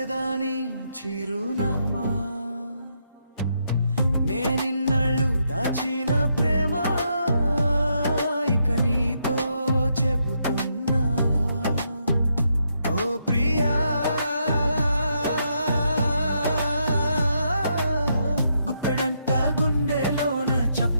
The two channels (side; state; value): both; inverted; correlation -0.78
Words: చిరునామా నేనిన్నళ్ళు దాచిన ప్రేమ ఇక నీతో చెబుతున్నా ఓ ప్రియా గుప్పెడంత గుండెలోన